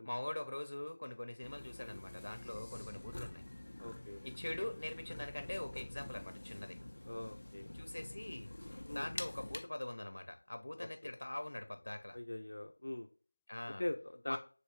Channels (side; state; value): both; inverted; correlation -1.00